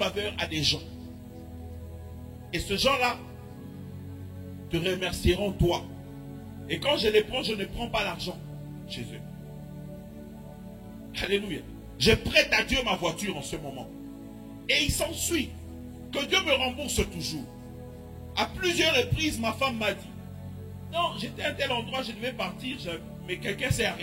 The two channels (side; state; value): both; identical; correlation 1.00